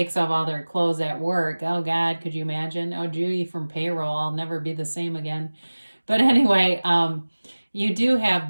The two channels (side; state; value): both; inverted; correlation -1.00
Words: off all their clothes at work. Oh, God, could you imagine? Oh, Judy from payroll, I'll never be the same again. But anyway, you do have